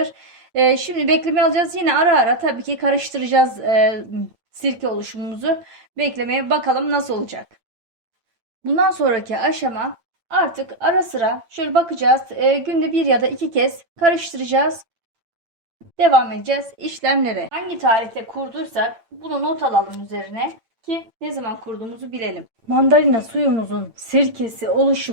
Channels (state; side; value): late; left; 8.8 ms